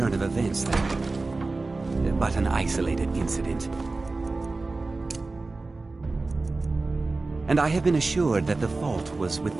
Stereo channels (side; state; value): left; quieter; 3.5 dB